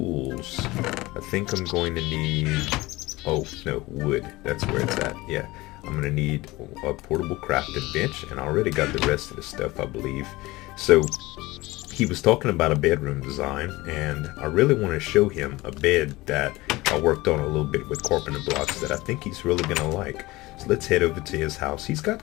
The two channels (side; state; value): right; quieter; 20.3 dB